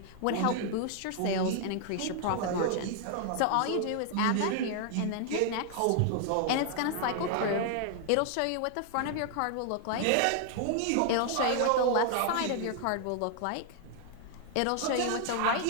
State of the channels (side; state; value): both; different; correlation 0.00